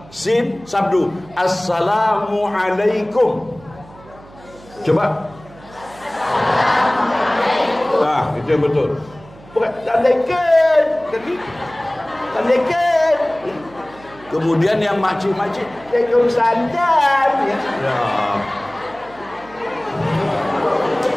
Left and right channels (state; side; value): noise; right; hum, 22 dB below the sound